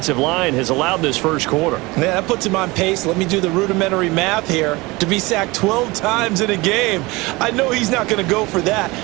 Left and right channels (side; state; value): left; quieter; 23.0 dB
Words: line has allowed this first quarter. Yeah, that puts him on pace. Let me do the rudimentary math here. To be sacked 12 times in a game. I know he's not going to go for that.